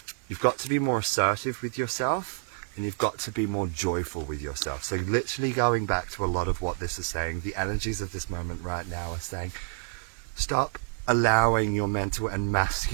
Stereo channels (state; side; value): silent; left; 59 dB below the other